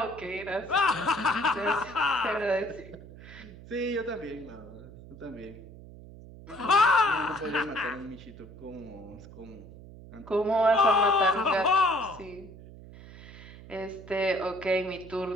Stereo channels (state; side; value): noise; right; hum, 17 dB below the sound